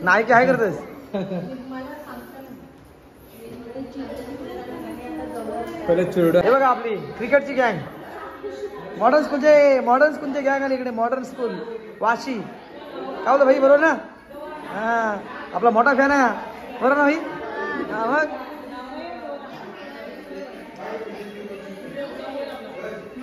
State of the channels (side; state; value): both; identical; correlation 1.00